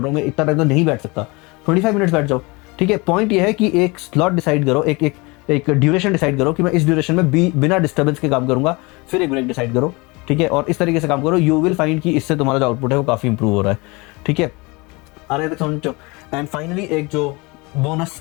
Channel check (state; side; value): quieter; right; 26.0 dB